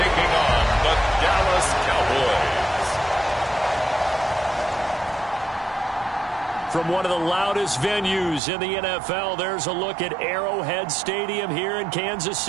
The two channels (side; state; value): left; drops out; at 8.4 s